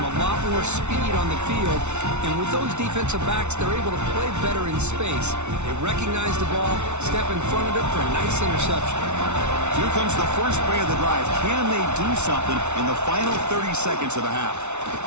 lot more speed on the field. And with those defensive backs, they're able to play better in space. They recognize the ball, step in front of it for a nice interception. Here comes the first play of the drive. Can they do something in the final 30 seconds of the half?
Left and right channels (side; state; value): left; late; 0.82 ms